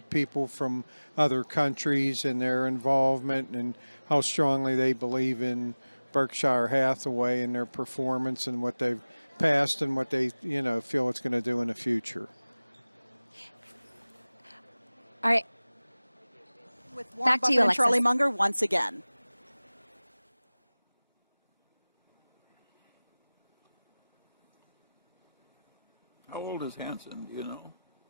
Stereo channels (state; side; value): inverted; both; correlation -0.99